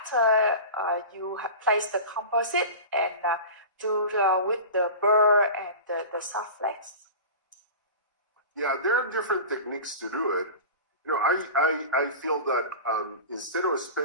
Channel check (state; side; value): inverted; both; correlation -0.32